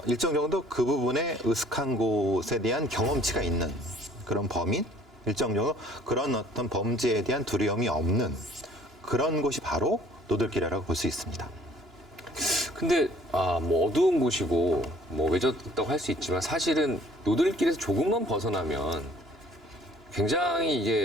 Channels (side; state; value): both; normal; correlation 0.56